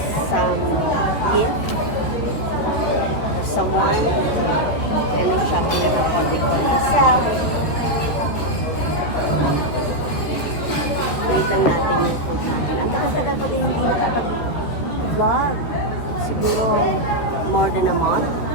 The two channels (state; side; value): late; right; 13 ms